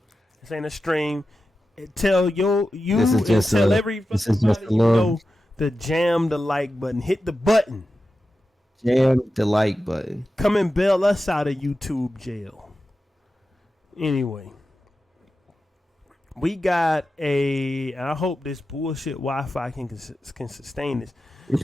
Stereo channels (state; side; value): normal; both; correlation 0.92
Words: This ain't a stream. Tell this you is and just tell a every this fucking is just body a you little know to jam the like button. Hit the button. jam the like button. Come and bail us out of YouTube jail. Anyway. We got I hope this bullshit Wi-Fi can sustain this.